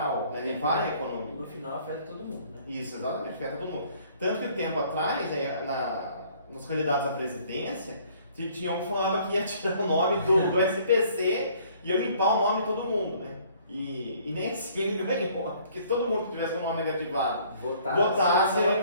né? Para a economia. No final afeta todo mundo, né? Isso, exatamente, afeta todo mundo. Tanto que tempo atrás, nos candidatos à presidência, tinha um que falava que ia tirar o nome do SPC e ia limpar o nome de todo mundo, né? E nem assim ele ganhou, porque se todo mundo que tivesse um nome negativado votasse,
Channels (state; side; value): inverted; both; correlation -0.58